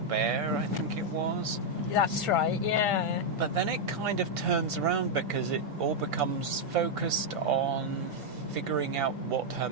I think it was. That's right, yeah. But then it kind of turns around because it all becomes focused on figuring out what her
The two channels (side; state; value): both; normal; correlation -0.01